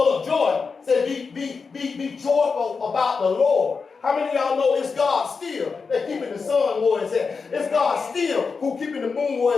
of joy. Say, be joyful about the Lord. How many of y'all know it's God still that keeping the sun where it's at? It's God still who keeping the moon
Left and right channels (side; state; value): right; quieter; 5.0 dB